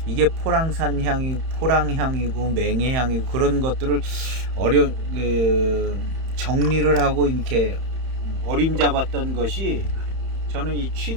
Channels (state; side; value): late; left; 31 ms